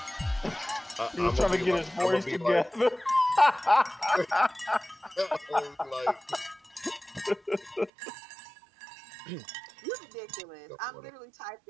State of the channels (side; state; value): left; drops out; at 7.9 s